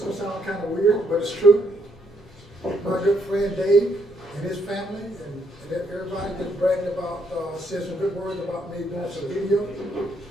is gonna sound kind of weird, but it's true. My good friend Dave and his family and everybody just bragging about, said some good words about me doing some video.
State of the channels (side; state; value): both; normal; correlation 0.73